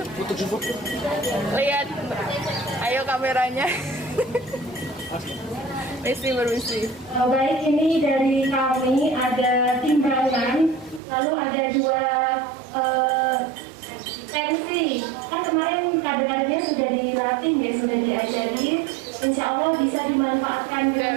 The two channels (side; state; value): left; drops out; at 11.0 s